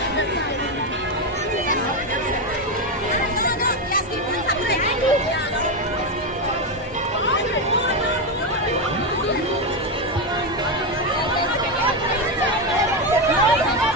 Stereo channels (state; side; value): normal; both; correlation 0.10